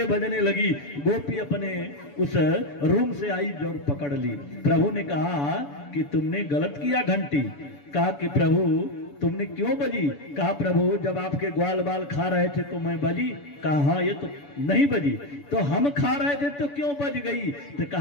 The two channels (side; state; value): right; late; 7.0 ms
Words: बजने लगी। गोपी अपने उस रूम से आई और पकड़ ली। प्रभु ने कहा कि तुमने गलत किया घंटी। कहा कि प्रभु तुमने क्यों बजी? कहा प्रभु जब आपके ग्वाल बाल खा रहे थे तो मैं बजी। कहा हाँ ये तो नहीं बजी, तो हम खा रहे थे तो क्यों बज गई? तो